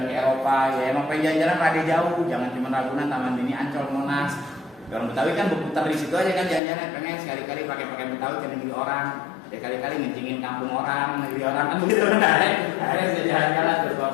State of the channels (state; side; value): drops out; right; at 6.6 s